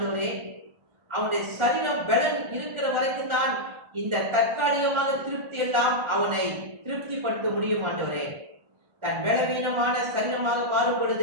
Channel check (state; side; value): late; left; 1.4 ms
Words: அவனுடைய சரீரம் பலன் இருக்கிற வரைக்கும் தான் இந்த தற்காலிகமாக திருப்தி எல்லாம் அவனை திருப்திப்படுத்த முடியும். ஆண்டவரே, தன் பலவீனமான சரீரமாக மாறும்